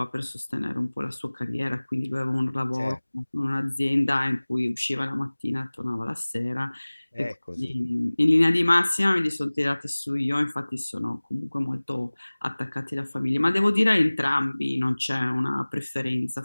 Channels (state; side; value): inverted; both; correlation -1.00